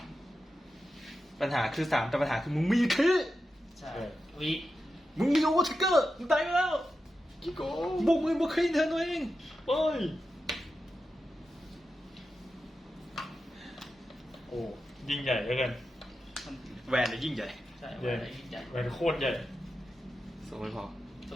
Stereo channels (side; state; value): both; normal; correlation 0.90